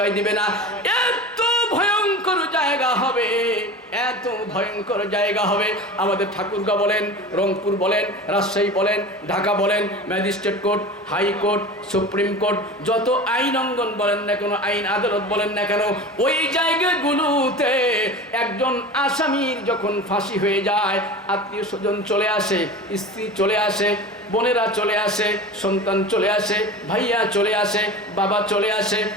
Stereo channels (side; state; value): both; normal; correlation 0.34